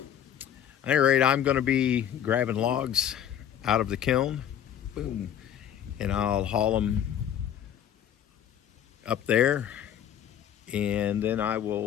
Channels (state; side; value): quieter; right; 9.8 dB